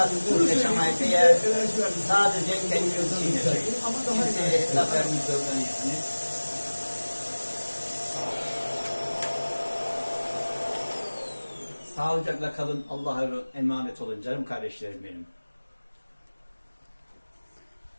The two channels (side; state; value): both; inverted; correlation -1.00